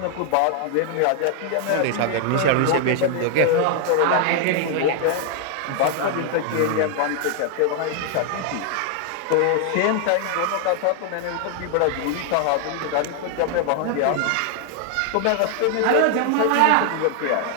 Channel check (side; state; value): both; different; correlation 0.00